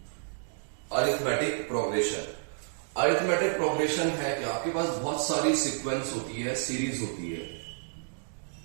Arithmetic progression. अरिथमेटिक प्रोग्रेशन है कि आपके पास बहुत सारी सीक्वेंस होती है, सीरीज होती है।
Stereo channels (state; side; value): silent; left; digital silence